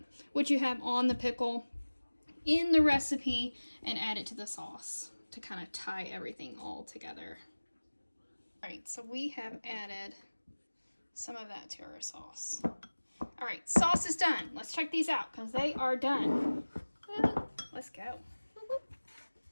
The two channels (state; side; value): inverted; both; correlation -1.00